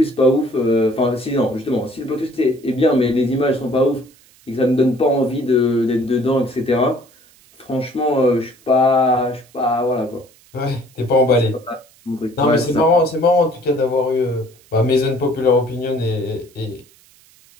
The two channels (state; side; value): noise; right; hiss, 29 dB below the sound